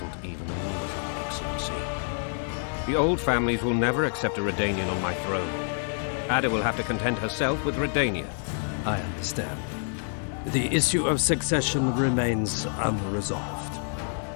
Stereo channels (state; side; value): silent; right; 59 dB below the other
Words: even amusing, Excellency. The old families will never accept a Redanian on my throne. Ada will have to content herself with Redania. I understand. The issue of succession remains unresolved.